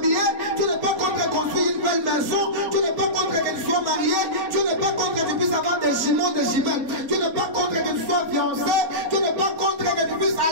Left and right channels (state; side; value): late; left; 4.4 ms